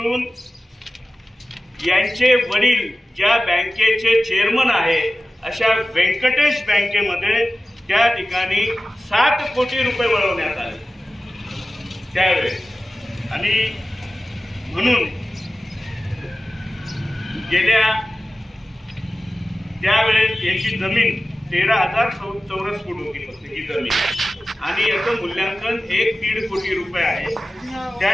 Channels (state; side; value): normal; both; correlation 0.95